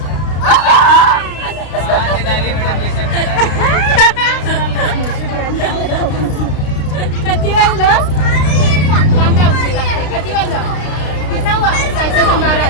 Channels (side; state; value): right; late; 33 ms